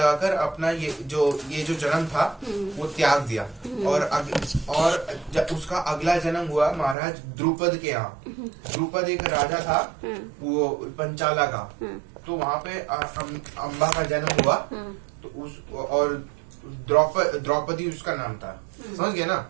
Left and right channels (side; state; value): left; drops out; at 7.0 s